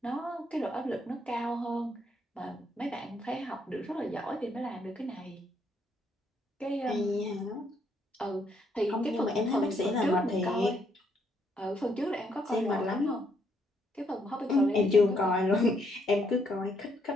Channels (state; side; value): normal; both; correlation 0.73